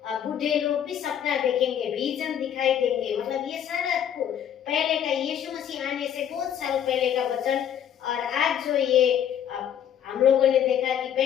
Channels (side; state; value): right; quieter; 9.5 dB